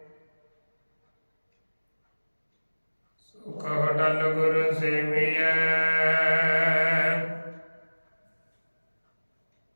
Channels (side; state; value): both; inverted; correlation -1.00